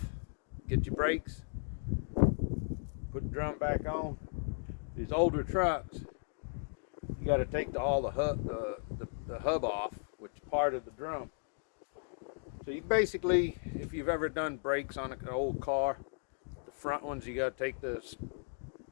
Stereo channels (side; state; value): right; silent; digital silence